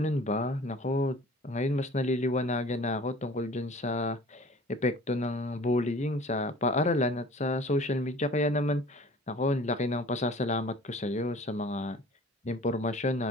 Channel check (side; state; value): both; normal; correlation 0.46